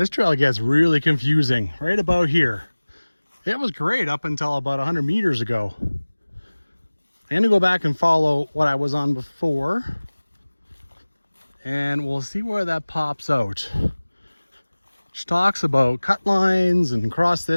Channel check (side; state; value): both; inverted; correlation -1.00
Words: trail gets really confusing right about here. It was great up until about 100 meters ago. I'm gonna go back and follow what I was on before, and we'll see where that pops out. She talks about cut lines and cross